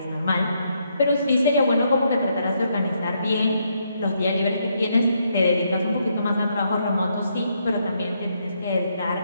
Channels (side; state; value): both; inverted; correlation -0.76